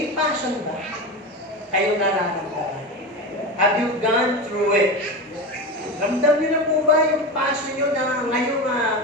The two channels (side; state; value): both; normal; correlation 0.22